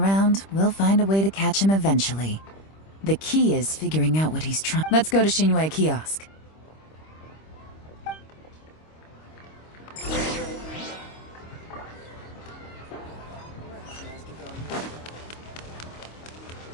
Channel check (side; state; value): right; late; 25 ms